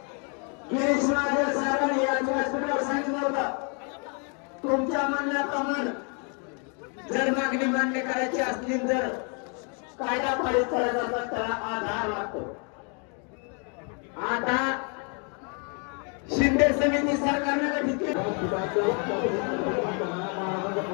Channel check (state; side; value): quieter; right; 37.8 dB